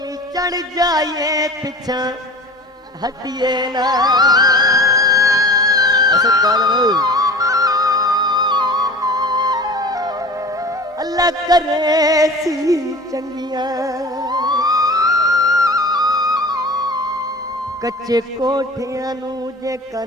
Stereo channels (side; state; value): both; normal; correlation 0.38